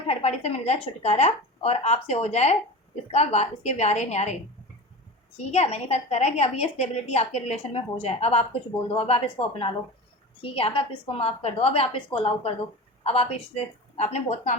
पार्टी से मिल जाए छुटकारा, और आपसे हो जाए इसके व्यारे न्यारे। ठीक है, मैनिफेस्ट कर रहा है कि अब ये स्टेबिलिटी आपके रिलेशन में हो जाए, अब आप कुछ बोल दो, अब आप इसको अपना लो। ठीक है, अब आप इसको माफ़ कर दो, अब आप इसको अलाउ कर दो। अब आप इससे, आपने बहुत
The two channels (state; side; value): normal; both; correlation 0.31